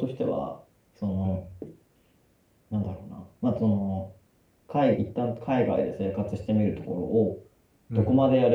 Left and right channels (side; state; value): both; identical; correlation 1.00